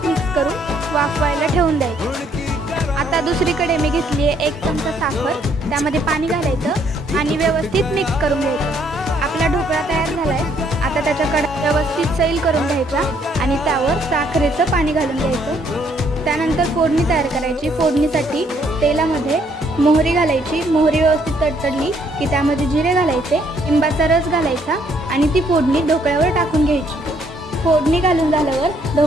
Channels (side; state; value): both; normal; correlation 0.68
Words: मिक्स करून वाफवायला ठेवून द्यायचं। आता दुसरीकडे मी घेतली आहे 1 चमचा साखर, त्यामध्ये पाणी घालायचं आणि व्यवस्थित मिक्स करून घ्यायचं। आपला ढोकळा तयार झालाय। आता त्याच्याकडे व्यवस्थित सैल करून घ्यायचा आणि त्यावर साखरेचं पाणी घालून घ्यायचं। त्यानंतर फोडणी तयार करायची। फोडणीसाठी तेलामध्ये मोहरी घालायची। मोहरी व्यवस्थित तडतडली की त्यामध्ये जिरे घालायचे, लिंबाचा रस घालायचा आणि ती फोडणी ढोकळ्यावर टाकून घ्यायची। फोडणी घालून झाल्यावर